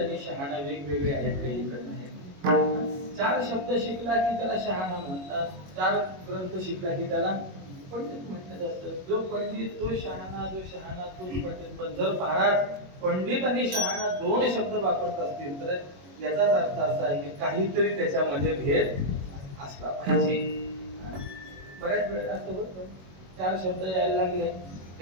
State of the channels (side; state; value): left; late; 21 ms